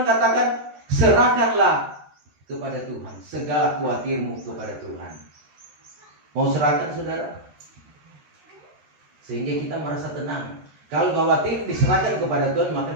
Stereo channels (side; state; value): left; late; 13 ms